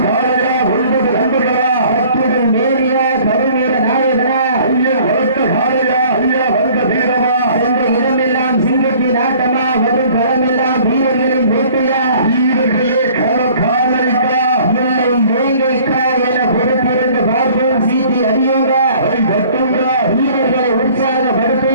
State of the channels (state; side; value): inverted; both; correlation -0.53